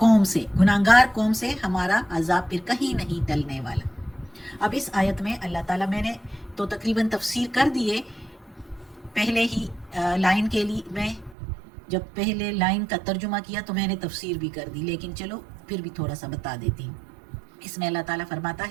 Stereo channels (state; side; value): drops out; left; at 11.4 s